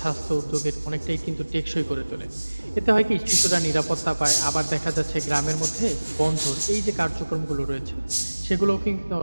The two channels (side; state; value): both; inverted; correlation -1.00